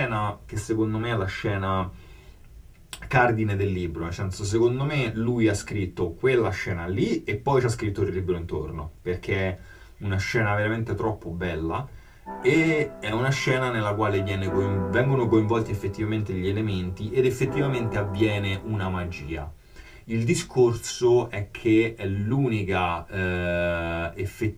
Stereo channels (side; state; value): both; identical; correlation 1.00